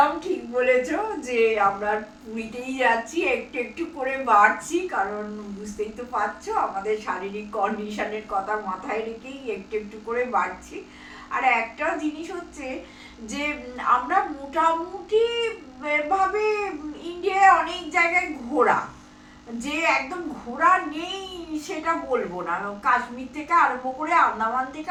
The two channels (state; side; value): identical; both; correlation 1.00